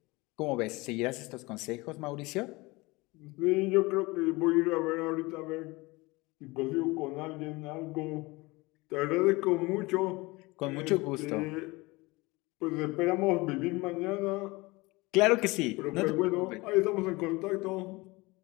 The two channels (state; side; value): quieter; right; 23.2 dB